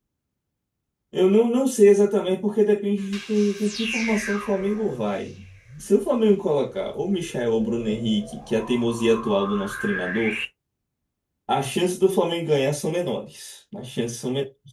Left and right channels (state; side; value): identical; both; correlation 1.00